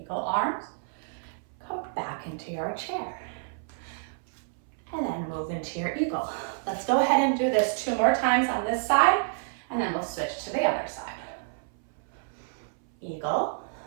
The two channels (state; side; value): silent; left; 59 dB below the other